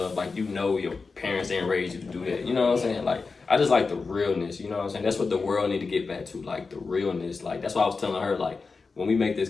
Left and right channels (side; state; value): right; quieter; 4.4 dB